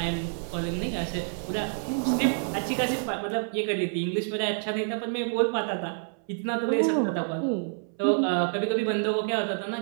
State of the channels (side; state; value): left; silent; 59 dB below the other